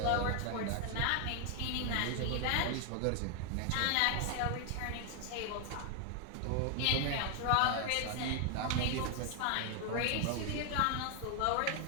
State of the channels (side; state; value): both; different; correlation 0.00